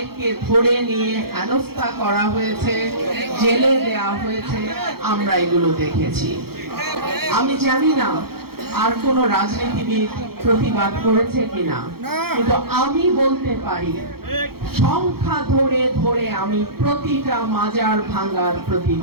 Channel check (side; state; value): left; late; 0.94 ms